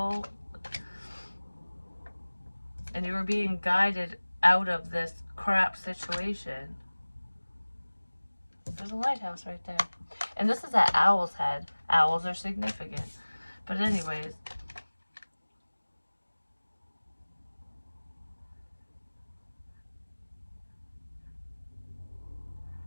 And you were being guided out of this crap situation. There's a lighthouse right there. And this is at Owl's Head. Owls are significant. But anyways.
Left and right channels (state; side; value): inverted; both; correlation -1.00